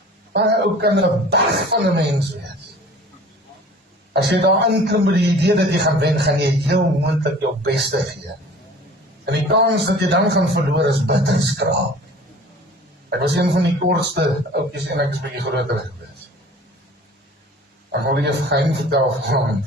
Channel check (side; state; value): both; normal; correlation 0.45